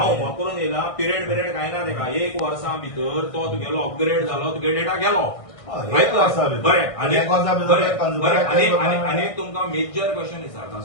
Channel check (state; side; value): late; right; 1.6 ms